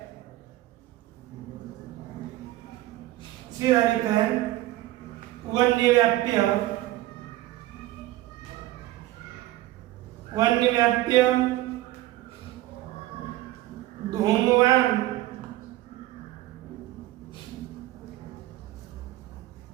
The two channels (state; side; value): quieter; left; 16.3 dB